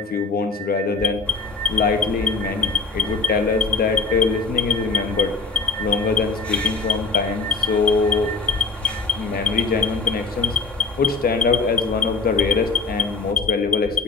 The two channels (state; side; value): quieter; right; 4.2 dB